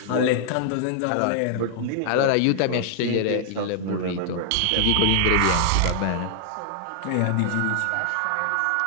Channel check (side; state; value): both; different; correlation -0.01